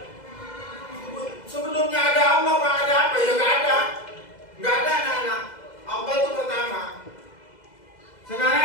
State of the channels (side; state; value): right; late; 2.0 ms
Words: Sebelumnya ada Allah, Pak, ada apa? Ya nggak ada. Nggak ada anak-anak. Allah itu pertama.